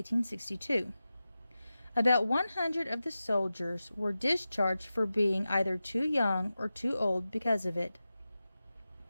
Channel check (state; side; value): inverted; both; correlation -0.94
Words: About 100 of the soldiers were discharged for being either too young or too old because of it.